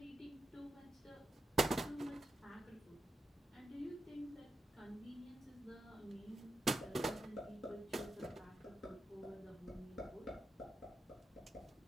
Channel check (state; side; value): normal; both; correlation 0.87